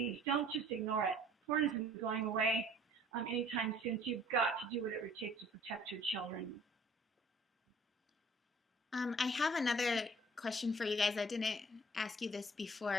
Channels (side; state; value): both; normal; correlation 0.54